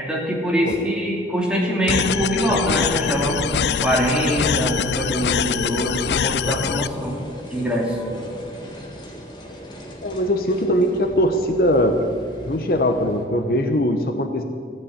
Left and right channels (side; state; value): both; normal; correlation 0.42